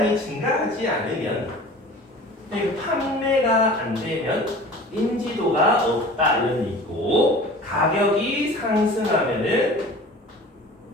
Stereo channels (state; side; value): normal; both; correlation 0.42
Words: 증가하지 않으면 그리고 판매가 안 되면 인지도가 없다 이런 얘기 있고 가격이 상승하면은